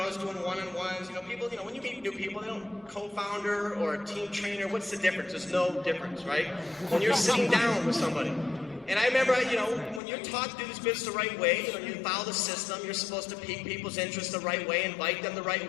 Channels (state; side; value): drops out; right; at 10.0 s